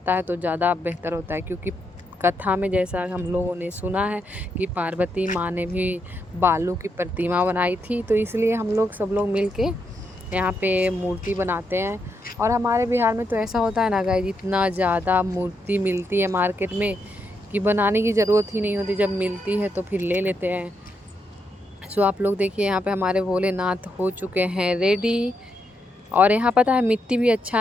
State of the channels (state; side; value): normal; both; correlation 0.81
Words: है तो ज़्यादा बेहतर होता है। क्योंकि कथा में जैसा हम लोगों ने सुना है कि पार्वती माँ ने भी बालू की प्रतिमा बनाई थी, तो इसलिए हम लोग सब लोग मिल के यहाँ पे मूर्ति बनाते हैं। और हमारे बिहार में तो ऐसा होता है ना गाइस, इतना ज़्यादा मूर्ति मिलती है मार्केट में कि बनाने की ज़रूरत ही नहीं होती, जब मिलती है तो फिर ले लेते हैं। सो आप लोग देखिए यहाँ पे हमारे भोलेनाथ हो चुके हैं रेडी। और यहाँ पता है मिट्टी भी